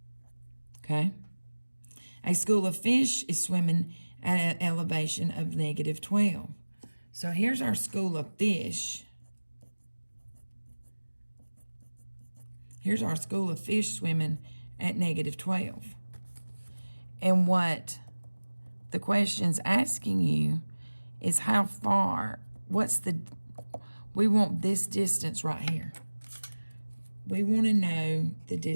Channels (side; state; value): both; inverted; correlation -1.00